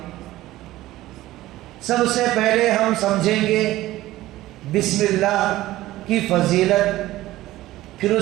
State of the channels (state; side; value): quieter; left; 16.2 dB